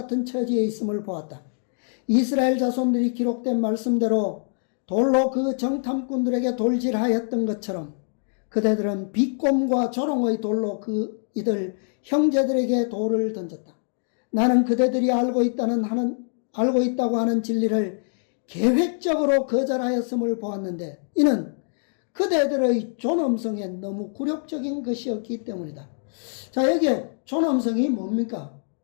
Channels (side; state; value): right; silent; digital silence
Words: 처지에 있음을 보았다. 이스라엘 자손들이 기록된 말씀대로 돌로 그 정탐꾼들에게 돌질하였던 것처럼 그대들은 비꼼과 조롱의 돌로 이들 형제들에게 돌을 던졌다. 나는 그대들이 알고 있다고 하는 진리를 계획적으로 거절하였음을 보았는데 이는 그대들의 존엄성에 너무 굴욕적인 것이었기 때문이다. 자, 여기에 존엄성이 뭡니까?